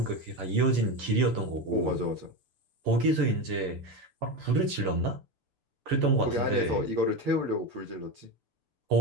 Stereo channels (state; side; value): late; left; 6.8 ms